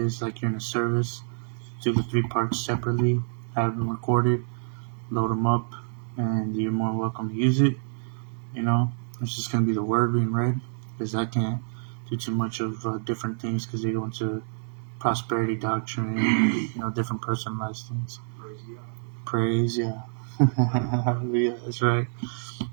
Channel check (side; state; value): left; silent; 60 dB below the other